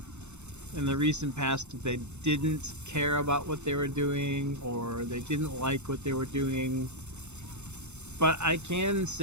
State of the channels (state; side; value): late; left; 0.82 ms